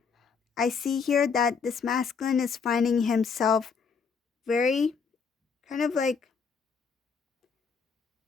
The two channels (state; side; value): quieter; right; 5.7 dB